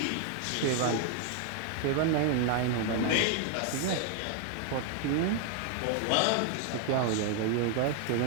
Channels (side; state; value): both; different; correlation 0.00